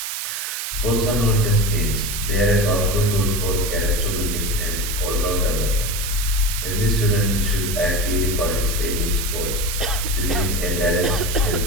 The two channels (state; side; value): noise; right; hiss, 4 dB below the sound